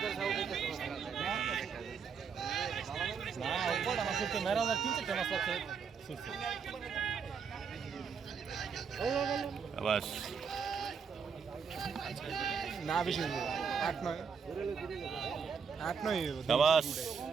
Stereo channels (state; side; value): quieter; left; 6.2 dB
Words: না বেশি 8-9